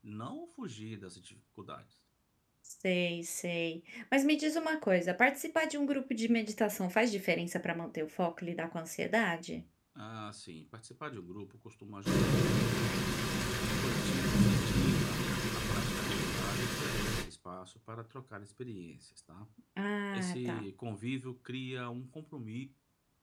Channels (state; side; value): identical; both; correlation 1.00